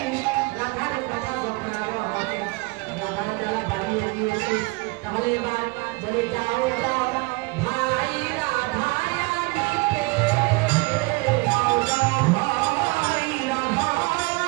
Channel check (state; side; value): quieter; left; 25.6 dB